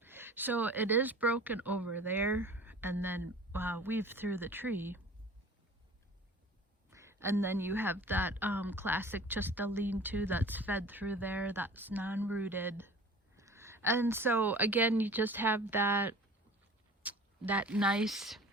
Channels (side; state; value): both; normal; correlation 0.43